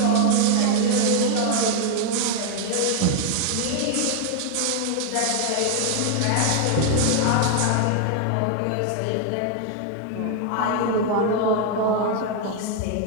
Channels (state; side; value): different; both; correlation 0.00